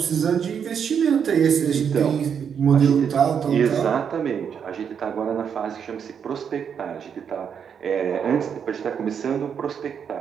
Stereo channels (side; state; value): left; quieter; 7.4 dB